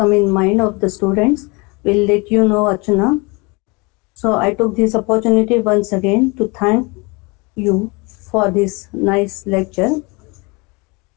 in mind of the students, we'll let you know, Archana. So I took this opportunity once again to thank you for this nice lecture.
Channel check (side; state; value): right; quieter; 28.0 dB